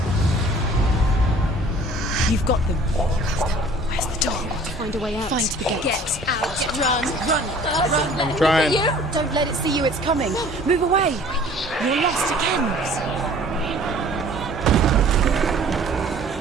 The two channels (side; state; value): both; normal; correlation 0.51